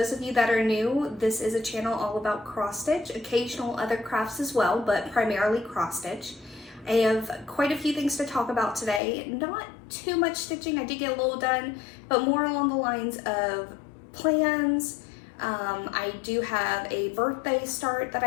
of you that are new, this is a channel all about cross stitch, occasional other crafts as well, but primarily cross stitch. I have quite a few things to talk about today. Not too much stitching, I did get a little done, but more along the lines of plans. I do have a birthday start that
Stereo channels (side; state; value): right; drops out; at 9.0 s